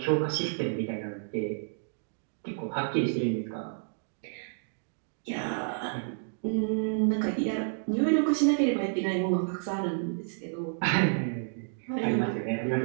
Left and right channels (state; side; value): silent; left; digital silence